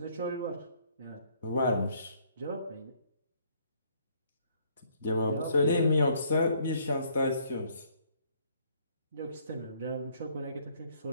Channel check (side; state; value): both; inverted; correlation -0.64